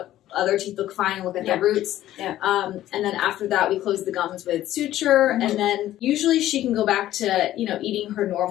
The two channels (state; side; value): quieter; right; 13.6 dB